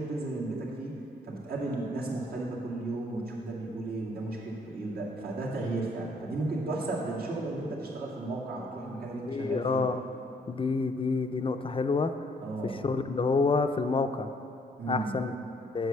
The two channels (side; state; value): both; normal; correlation 0.65